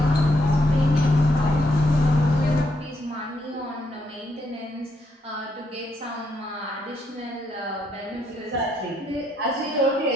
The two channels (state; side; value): normal; both; correlation 0.76